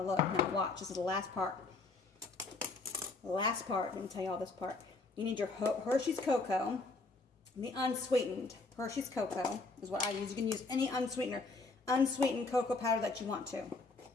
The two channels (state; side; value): quieter; right; 3.7 dB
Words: Look. Now watch. This is the last part. The last part. Let me tell you all this part. You need your Hershey's Cocoa. The unsweetened Hershey's Cocoa is what I use. You can use any unsweetened cocoa powder that you want to.